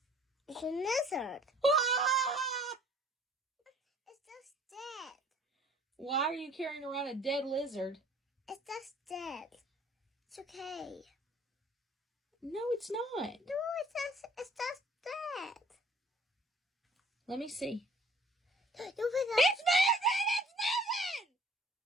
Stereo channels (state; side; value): normal; both; correlation 0.55